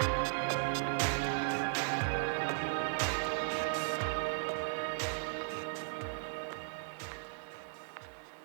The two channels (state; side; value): silent; left; 53 dB below the other